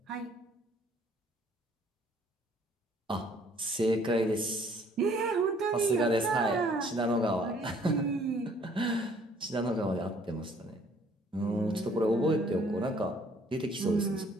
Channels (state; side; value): normal; both; correlation 0.60